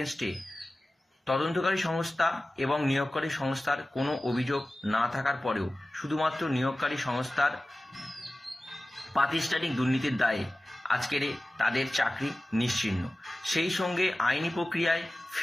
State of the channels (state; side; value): normal; both; correlation 0.97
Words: তদন্তকারী সংস্থা এবং নিয়োগকারী সংস্থার কোনো অভিযোগ না থাকার পরেও শুধুমাত্র নিয়োগকারী সংস্থার প্রাতিষ্ঠানিক দুর্নীতির দায়ে আজকের তাদের চাকরি নিশ্চিহ্ন। সেই সঙ্গে আইনি প্রক্রিয়ায়